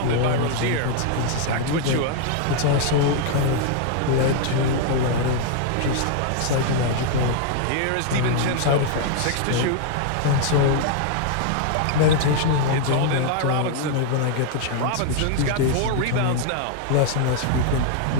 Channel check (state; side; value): different; both; correlation 0.00